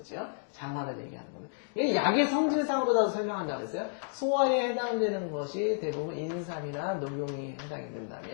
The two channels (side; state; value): right; silent; digital silence